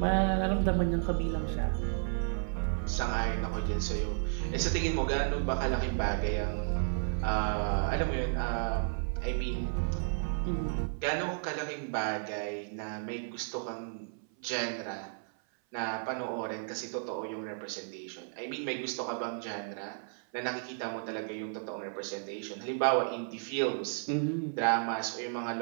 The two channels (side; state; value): left; silent; 56 dB below the other